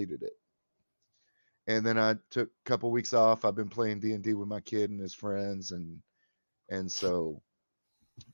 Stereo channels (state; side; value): inverted; both; correlation -1.00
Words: it. And then I took a couple weeks off. I've been playing D&D with my kid and his friends, and so